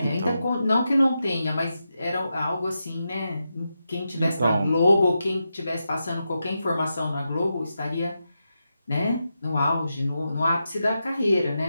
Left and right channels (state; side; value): inverted; both; correlation -0.88